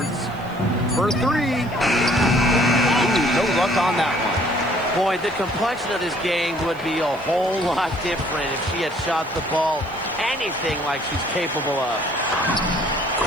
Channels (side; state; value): right; noise; hiss, 27 dB below the sound